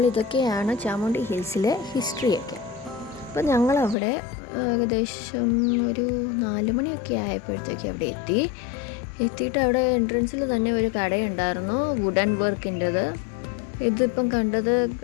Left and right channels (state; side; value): drops out; right; at 4.0 s